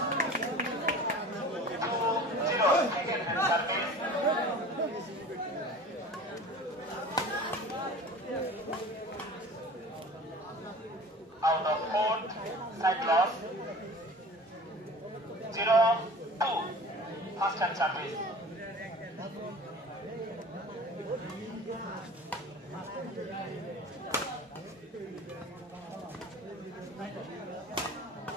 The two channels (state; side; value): normal; both; correlation 0.40